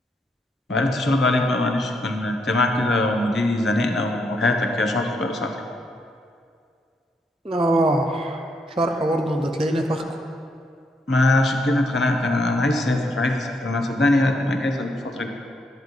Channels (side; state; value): both; normal; correlation 0.76